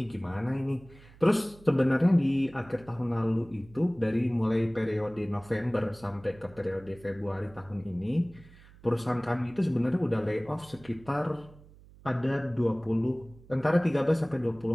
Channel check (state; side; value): noise; right; hum, 23 dB below the sound